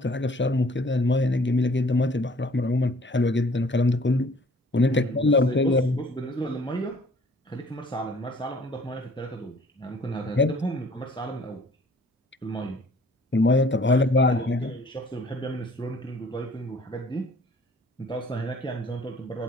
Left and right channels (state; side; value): normal; both; correlation 0.55